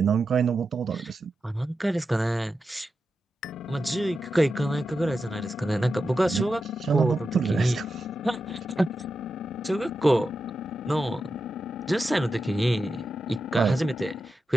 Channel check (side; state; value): both; normal; correlation 0.90